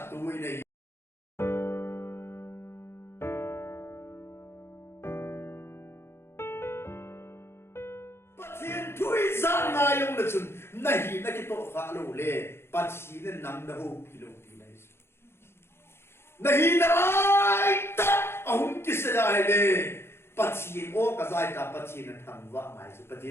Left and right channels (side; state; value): right; late; 0.12 ms